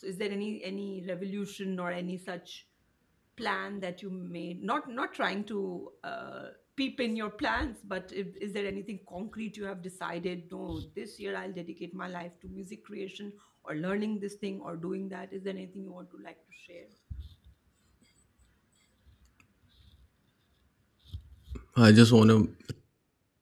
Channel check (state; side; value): identical; both; correlation 1.00